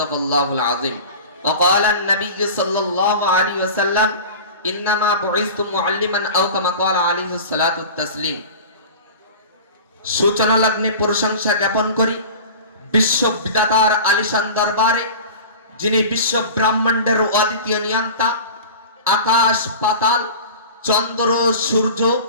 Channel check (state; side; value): inverted; both; correlation -0.35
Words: الله العظيم وقال النبي صلى الله عليه وسلم إنما بعثت معلما أو كما قال عليه الصلاة والتسليم সূচনা লগ্নে প্রশংসা জ্ঞাপন করি বিশ্ব বিধাতার আলিশান দরবারে, যিনি বিশ্ব ব্রহ্মাণ্ডের অদ্বিতীয় নিয়ন্তা, আকাশ পাতাল, চন্দ্র সূর্য